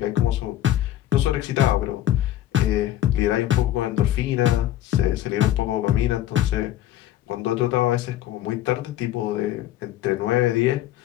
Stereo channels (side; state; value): right; quieter; 13.0 dB